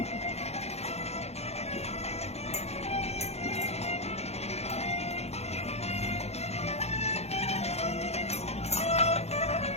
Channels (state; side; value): late; right; 0.31 ms